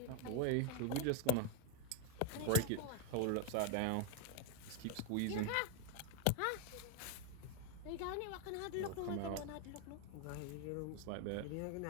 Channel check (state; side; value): different; both; correlation 0.01